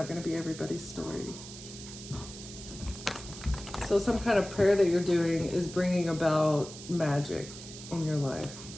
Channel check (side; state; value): right; noise; hiss, 13 dB below the sound